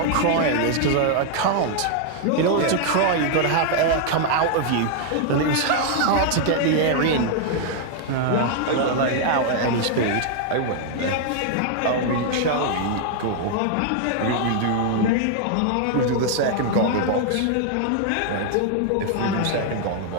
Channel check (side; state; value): both; different; correlation 0.00